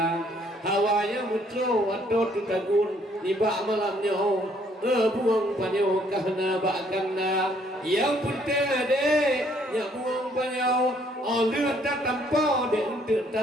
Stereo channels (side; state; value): both; normal; correlation 0.65